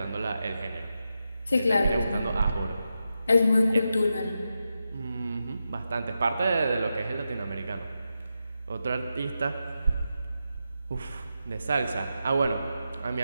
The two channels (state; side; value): inverted; both; correlation -0.88